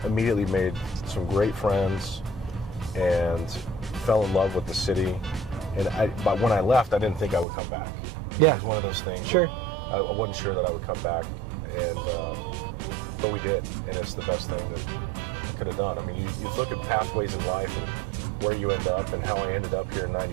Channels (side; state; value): left; drops out; at 7.5 s